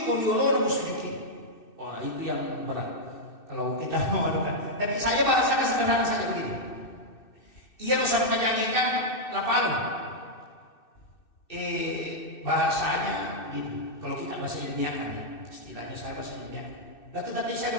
kau diolor mau sujud. Wah, itu yang berat. Kalau kita mau adukan. Tapi saya bahasakan sederhana saja begini. Ia harus menyanyikan lapal. Bahasanya gini. Kalau kita bahasa ilmiahkan, istilahnya saya bahasa ilmiah. Lalu tadi saya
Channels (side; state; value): right; late; 2.6 ms